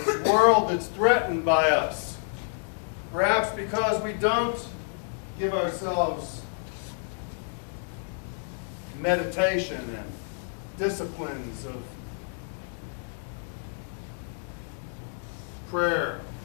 world that's threatened by us, perhaps because we don't give ourselves meditation and disciplines of prayer,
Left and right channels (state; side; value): silent; right; digital silence